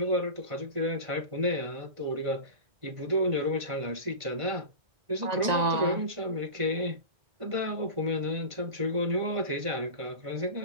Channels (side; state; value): left; late; 1.9 ms